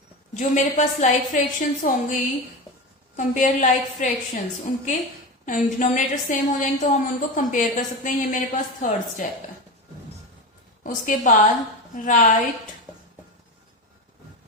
जो मेरे पास लाइक फ्रैक्शंस होंगी, कंपेयर लाइक फ्रैक्शंस, उनके डिनोमिनेटर सेम हो जाएंगे तो हम उनको कंपेयर कर सकते हैं। ये मेरे पास थर्ड स्टेप है। उसके बाद राइट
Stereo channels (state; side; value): normal; both; correlation 0.22